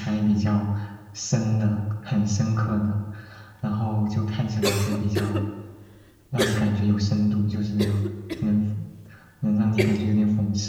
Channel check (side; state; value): both; identical; correlation 1.00